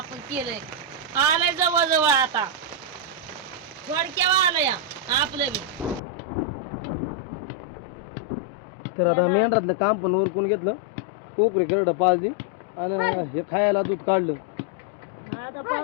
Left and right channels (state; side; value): drops out; right; at 6.0 s